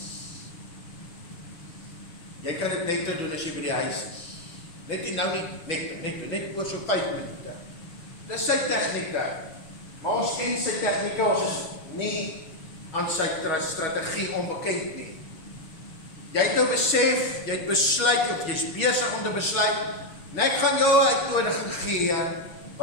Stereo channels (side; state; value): right; late; 6.2 ms